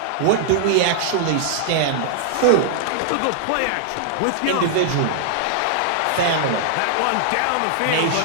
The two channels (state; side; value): different; both; correlation -0.01